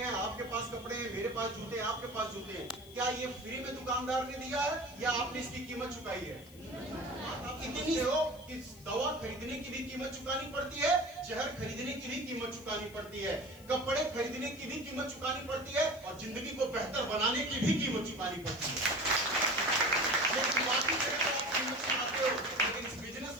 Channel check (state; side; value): noise; left; hiss, 22 dB below the sound